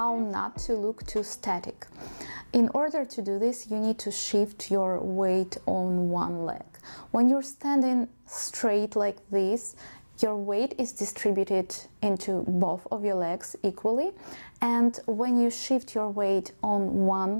not to look too static. In order to do this, you need to shift your weight on one leg. When you're standing straight like this, your weight is distributed into both of your legs equally, and when you shift your weight on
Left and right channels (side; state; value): both; inverted; correlation -1.00